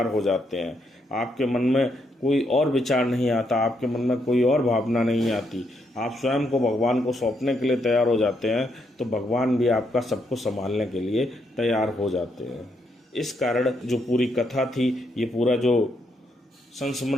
हो जाते हैं, आपके मन में कोई और विचार नहीं आता, आपके मन में कोई और भावना नहीं आती, आप स्वयं को भगवान को सौंपने के लिए तैयार हो जाते हैं, तो भगवान भी आपका सब कुछ संभालने के लिए तैयार हो जाते हैं। इस कारण जो पूरी कथा थी, ये पूरा जो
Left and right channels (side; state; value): both; normal; correlation 0.77